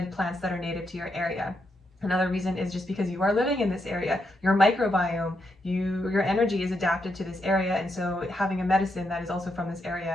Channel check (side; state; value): both; normal; correlation 0.81